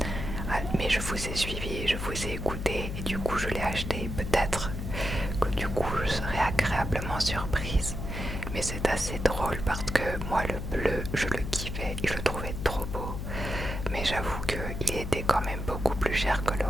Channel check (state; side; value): noise; left; hum, 5 dB below the sound